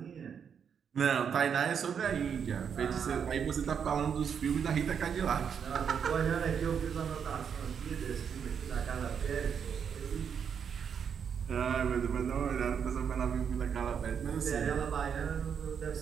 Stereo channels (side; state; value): left; quieter; 7.3 dB